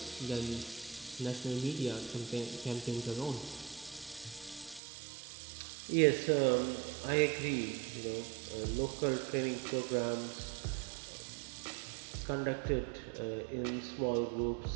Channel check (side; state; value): left; drops out; at 4.8 s